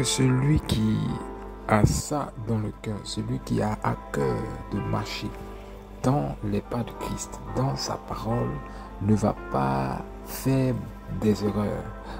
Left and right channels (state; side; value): identical; both; correlation 1.00